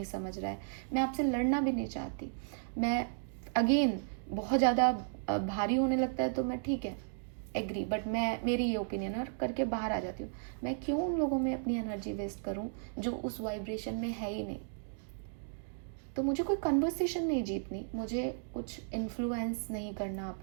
समझ रहा है। मैं आपसे लड़ना भी नहीं चाहती। मैं अगेन बहुत ज़्यादा भारी होने लगता है तो मैं ठीक है एग्री, बट मैं मेरी ये ओपिनियन और करके बाहर आ जाती हूँ। मैं क्यों उन लोगों में अपनी एनर्जी वेस्ट करूँ जो उस वाइब्रेशन में है ही नहीं। तो मुझे कोई कन्वर्सेशन नहीं जीतनी, मुझे कुछ इन्फ्लुएंस नहीं करना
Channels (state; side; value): silent; left; digital silence